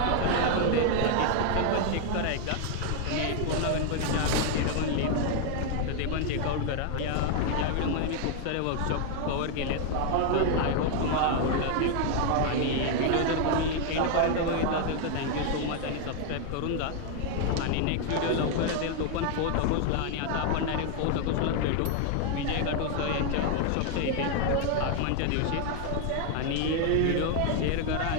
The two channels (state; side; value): different; both; correlation 0.00